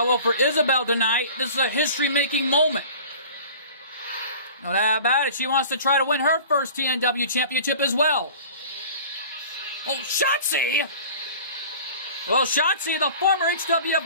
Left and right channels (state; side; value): inverted; both; correlation -0.42